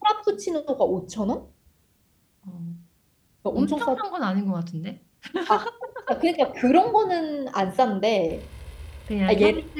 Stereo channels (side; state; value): both; identical; correlation 1.00